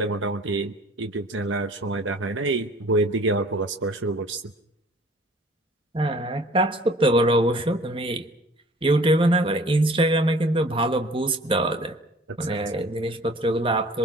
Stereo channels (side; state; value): both; normal; correlation 0.50